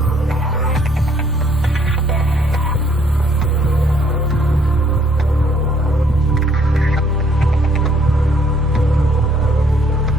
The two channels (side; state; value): both; normal; correlation 0.66